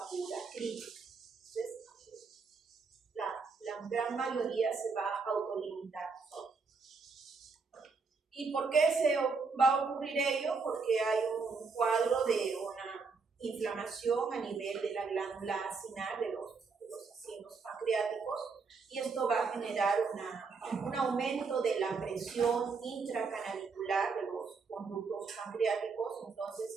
crítica. Entonces, la gran mayoría se va a autolimitar. ¿Y por qué se va a ocurrir ello? Porque hay un cuadro de una inflamación a nivel de la glándula acinar de los acinos pancreáticos, y esto va a generar un aumento de la presión intracanalicular de los conductos pancreáticos.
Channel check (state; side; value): quieter; left; 4.7 dB